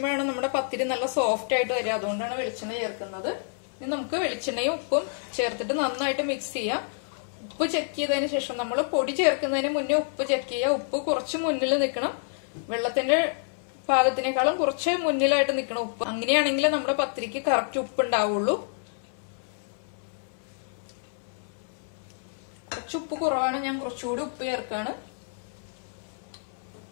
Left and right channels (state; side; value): silent; right; 58 dB below the other